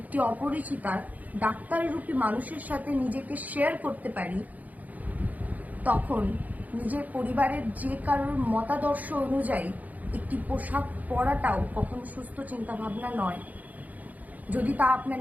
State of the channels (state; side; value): late; left; 0.078 ms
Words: একটি অপরিচিতা ডাক্তাররূপী মানুষের সাথে নিজেকে শেয়ার করতে পারি, তখন নিজের পরিবারের যে কারোর মতাদর্শ অনুযায়ী একটি পোশাক পরাটাও কখনো সুস্থ চিন্তাভাবনা নয়। যদি তা আপনার